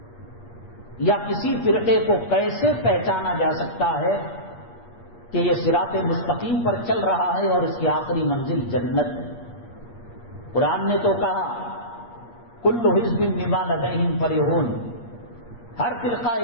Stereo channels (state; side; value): late; right; 8.5 ms